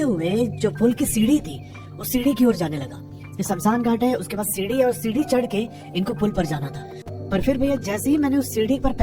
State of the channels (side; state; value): both; identical; correlation 1.00